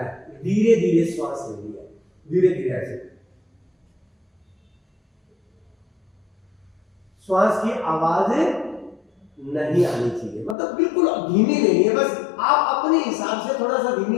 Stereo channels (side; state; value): right; drops out; at 10.6 s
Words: धीरे धीरे श्वास लेनी है, धीरे धीरे ऐसे। श्वास की आवाज नहीं आनी चाहिए, मतलब बिल्कुल धीमी नहीं है, बस आप अपने हिसाब से थोड़ा सा धीमी